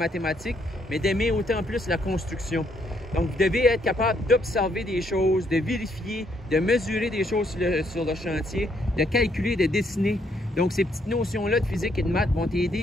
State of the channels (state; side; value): normal; both; correlation 0.72